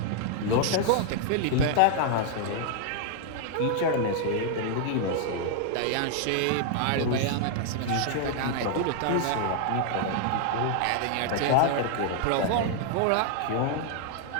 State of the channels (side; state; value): both; different; correlation 0.00